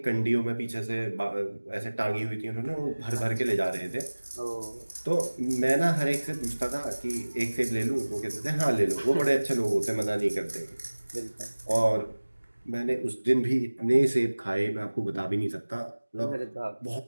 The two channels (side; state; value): both; inverted; correlation -1.00